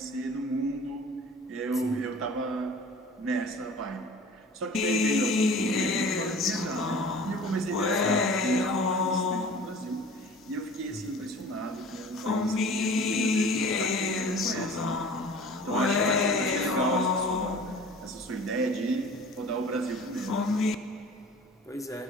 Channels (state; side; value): normal; both; correlation 0.43